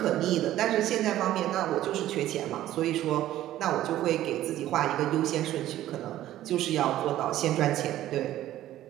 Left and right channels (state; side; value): quieter; left; 13.7 dB